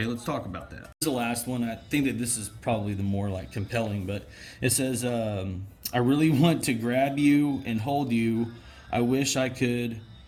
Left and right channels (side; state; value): both; identical; correlation 1.00